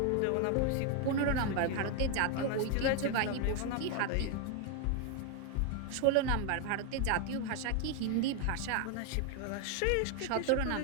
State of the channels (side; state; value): both; different; correlation 0.01